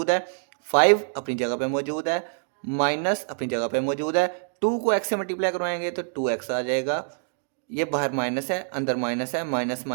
है। 5 अपनी जगह पे मौजूद है, माइनस अपनी जगह पे मौजूद है। 2 को x से मल्टीप्लाई करवाएंगे तो 2x आ जाएगा, ये बाहर माइनस है अंदर माइनस है, माइनस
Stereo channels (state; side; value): silent; left; digital silence